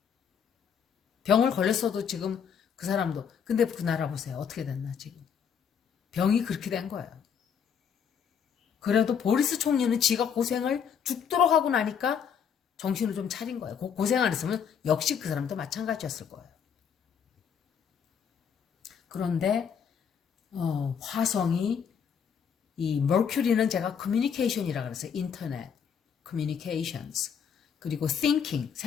병을 걸렸어도 지금 그 사람도. 근데 그 나라 보세요. 어떻게 됐나 지금. 병이 그렇게 된 거예요. 그래도 보리스 총리는 지가 고생을 죽도록 하고 나니까 정신을 좀 차린 거예요. 고생 안 했으면 역시 그 사람도 마찬가지였을 거예요. 그런데 화성이 이 머큐리는 제가 커뮤니케이션이라고 그랬어요. 인터넷, 커뮤니케이션스. 그리고 thinking,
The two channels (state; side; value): quieter; right; 7.4 dB